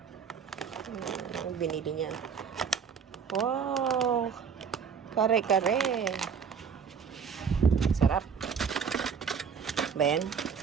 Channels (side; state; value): left; quieter; 6.7 dB